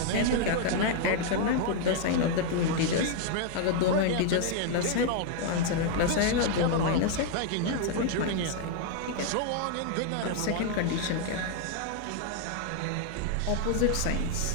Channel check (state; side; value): different; both; correlation 0.00